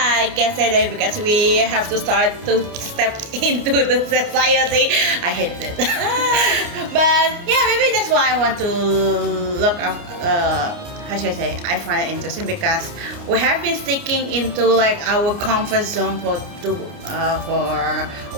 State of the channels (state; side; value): late; left; 29 ms